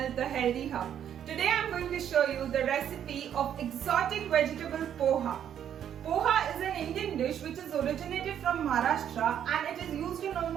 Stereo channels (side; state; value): left; quieter; 9.6 dB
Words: The Healthy Hub. Today I am going to show you the recipe of exotic vegetable poha. Poha is an Indian dish which is originated from Maharashtra and it is used in